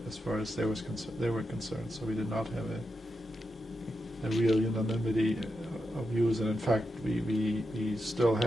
as far as they were concerned, so we did not have a real unanimity views, and in fact, we still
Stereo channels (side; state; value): both; normal; correlation 0.87